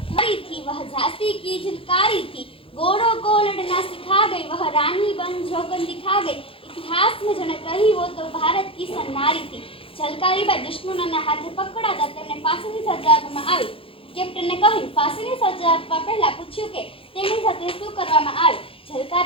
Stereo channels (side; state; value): right; late; 0.27 ms